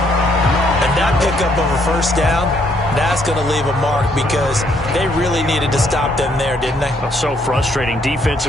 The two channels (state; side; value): normal; both; correlation 0.69